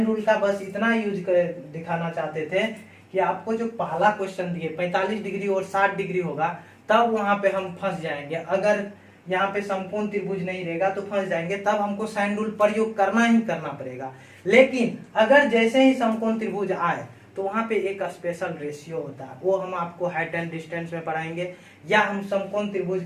रूल का बस इतना यूज कर दिखाना चाहते थे कि आपको जो पहला क्वेश्चन दिए 45 डिग्री और 60 डिग्री होगा तब वहां पे हम फंस जाएंगे, अगर यहाँ पे समकोण त्रिभुज नहीं रहेगा तो फंस जाएंगे, तब हमको साइन रूल प्रयोग करना ही करना पड़ेगा। लेकिन अगर जैसे ही समकोण त्रिभुज आए तो वहां पे एक स्पेशल रेशियो होता है, वो हम आपको हाइट एंड डिस्टेंस में पढ़ाएंगे, या हम समकोण त्रिभुज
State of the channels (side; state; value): both; identical; correlation 1.00